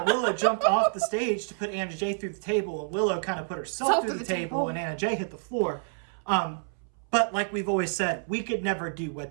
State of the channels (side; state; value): left; silent; 59 dB below the other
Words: Willow jumped off the stage to put Anna Jay through the table, and Willow kind of put herself through the table, and Anna Jay hit the floor. But like we've always said, we could never do